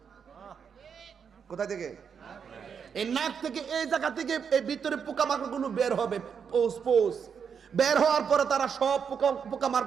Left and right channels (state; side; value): quieter; left; 6.8 dB